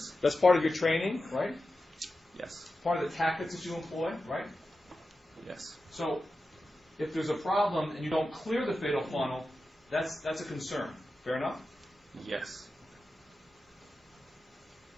That's part of your training, right? Yes. Part of the tactics that you employ, right? Yes. So if there's a problem and you don't clear the fatal funnel, that's a concern. Fair enough? Yes.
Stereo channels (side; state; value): both; normal; correlation 0.92